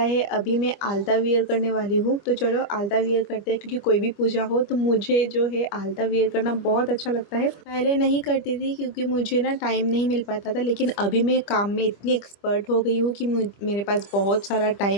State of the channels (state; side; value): late; right; 25 ms